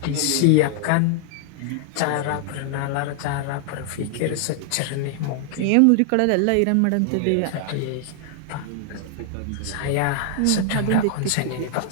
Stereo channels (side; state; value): both; different; correlation 0.00